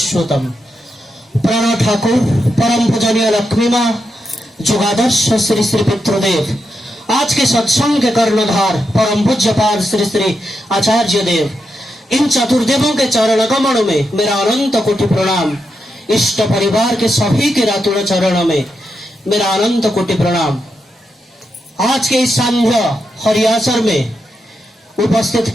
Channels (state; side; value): normal; both; correlation 0.85